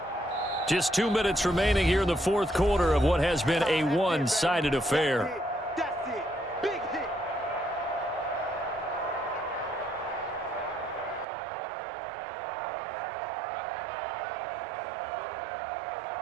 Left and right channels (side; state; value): left; drops out; at 11.2 s